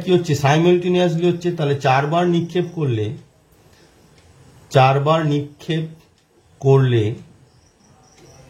কি হচ্ছে? সাইমালটেনিয়াসলি হচ্ছে। তাহলে 4বার নিক্ষেপ করলে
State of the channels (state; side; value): identical; both; correlation 1.00